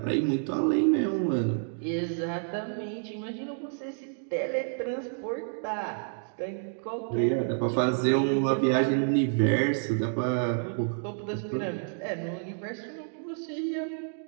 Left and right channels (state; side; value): silent; left; digital silence